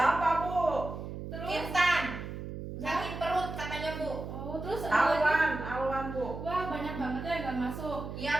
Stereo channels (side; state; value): right; noise; hum, 8 dB below the sound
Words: Bu? Terus, Intan. Sakit perut katanya, Bu. oh terus ada lagi? Alwan, Bu. Wah, banyak banget ya yang nggak masuk.